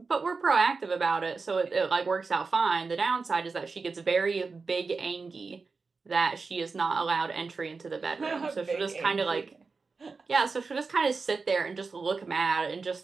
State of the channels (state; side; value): quieter; left; 4.4 dB